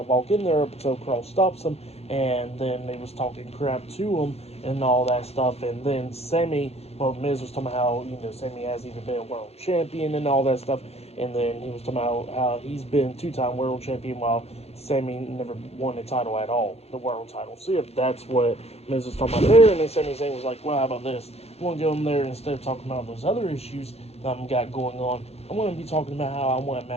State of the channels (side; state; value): right; late; 0.30 ms